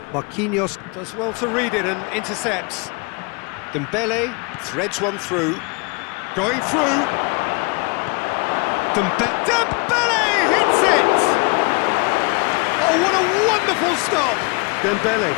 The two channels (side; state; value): right; quieter; 30.9 dB